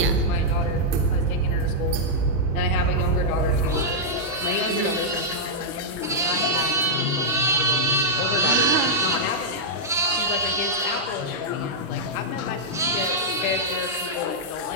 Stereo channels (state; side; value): normal; both; correlation -0.08